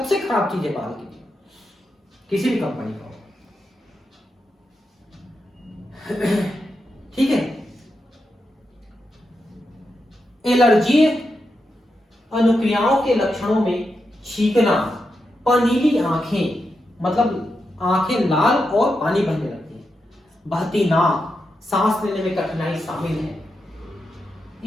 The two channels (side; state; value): both; normal; correlation 0.86